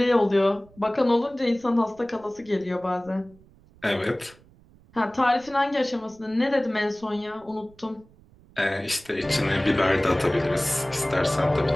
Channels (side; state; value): right; noise; rumble, 27 dB below the sound